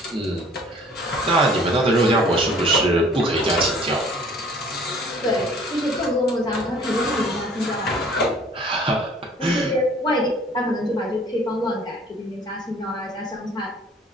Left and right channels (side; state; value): both; normal; correlation 0.53